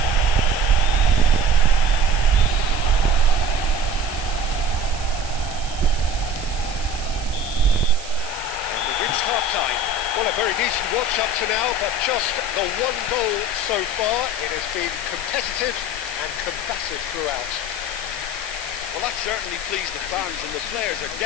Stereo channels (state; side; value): noise; right; hiss, 13 dB below the sound